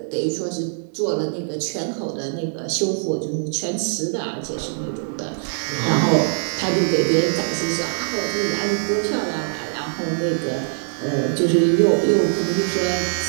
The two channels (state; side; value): silent; left; digital silence